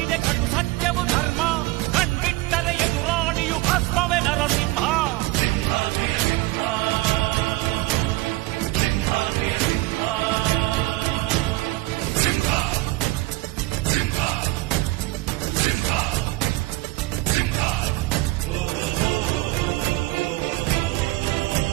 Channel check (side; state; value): left; quieter; 19.6 dB